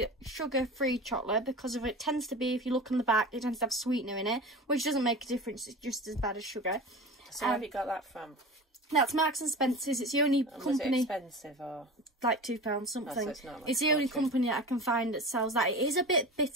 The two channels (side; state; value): both; normal; correlation 0.32